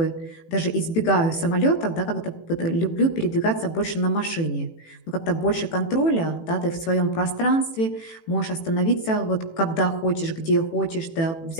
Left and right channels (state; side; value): late; right; 18 ms